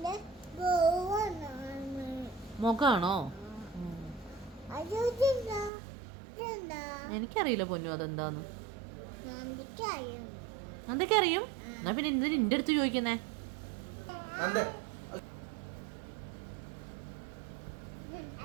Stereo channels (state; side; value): drops out; left; at 5.7 s